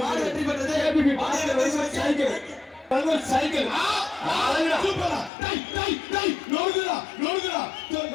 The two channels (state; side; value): drops out; right; at 5.3 s